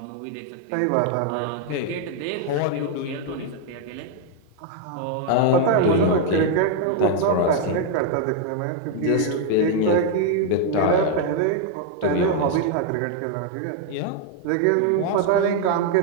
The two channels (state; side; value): different; both; correlation 0.01